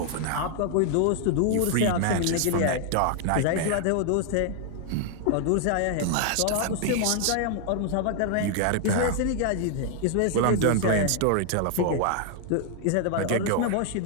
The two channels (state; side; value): different; both; correlation 0.00